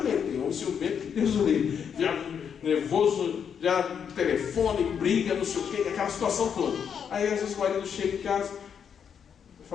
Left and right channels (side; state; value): right; quieter; 7.5 dB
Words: tem homem ciumento, Deus o livre, já nervoso, já telefone, briga, não sei o quê, aquela situação toda. Aí às vezes o marido chega em casa,